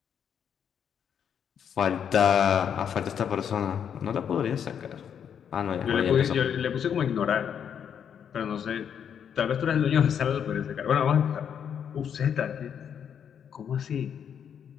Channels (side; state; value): right; quieter; 8.2 dB